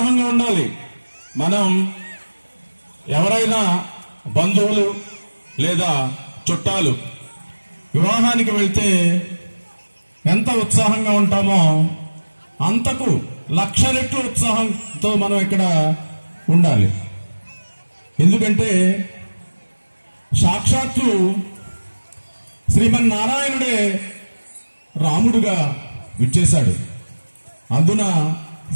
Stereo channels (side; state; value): both; inverted; correlation -1.00